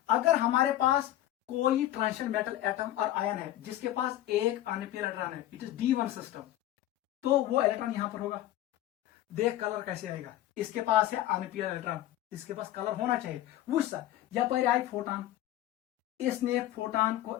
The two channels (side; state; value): right; quieter; 13.8 dB